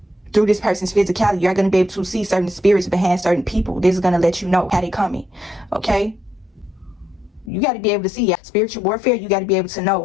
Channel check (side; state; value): right; drops out; at 7.5 s